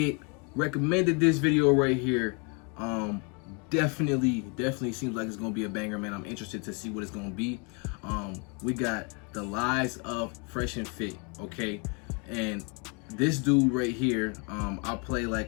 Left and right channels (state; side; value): quieter; right; 34.3 dB